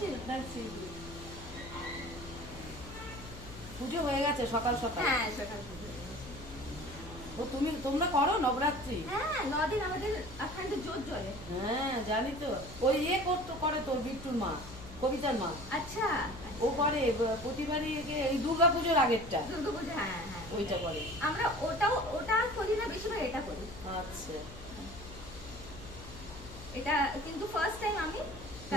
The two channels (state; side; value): noise; left; hum, 15 dB below the sound